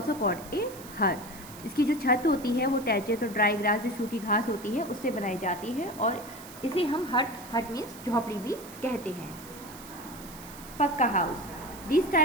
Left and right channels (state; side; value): noise; right; hiss, 16 dB below the sound